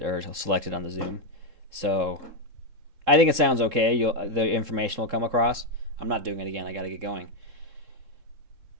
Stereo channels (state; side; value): late; left; 3.7 ms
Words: or selected on the Zoom. So I think it sounds okay. The information will come across. I'm not doing it again. I got to get going.